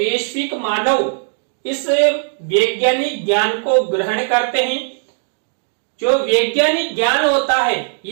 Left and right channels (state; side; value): silent; left; digital silence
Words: मानव इस वैज्ञानिक ज्ञान को ग्रहण करते हैं। जो वैज्ञानिक ज्ञान होता है